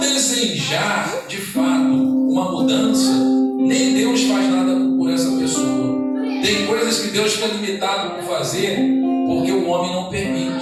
de fato uma mudança, nem Deus faz nada por essa pessoa. Tem coisas que Deus fica limitado por fazer porque o homem não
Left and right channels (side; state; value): both; identical; correlation 1.00